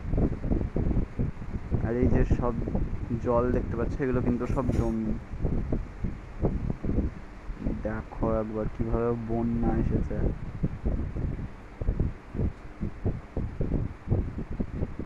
আর এই যে সব জল দেখতে পাচ্ছ, এগুলো কিন্তু সব জমি। দেখো একবার কিভাবে বন্যা এসেছে।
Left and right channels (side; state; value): both; identical; correlation 1.00